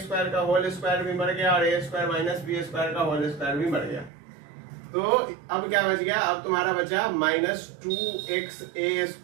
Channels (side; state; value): left; drops out; at 4.1 s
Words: का whole square भी मर गया और ए स्क्वायर माइनस बी स्क्वायर का होल स्क्वायर भी मर गया। तो अब क्या बच गया, अब तुम्हारा बचा minus 2x A